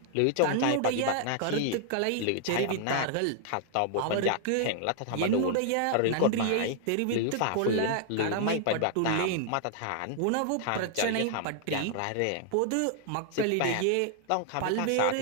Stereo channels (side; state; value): both; different; correlation 0.00